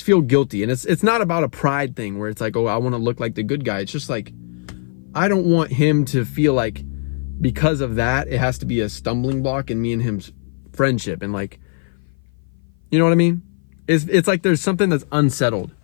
feel guilty. And it's not about a pride thing where it's like, oh, I want to look like the good guy. It's just like, I don't want him to feel like because of that, it has to be a stumbling block in me and him's friendship. And like, you know what I mean? It's like there's something that's unsettled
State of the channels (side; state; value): right; silent; 56 dB below the other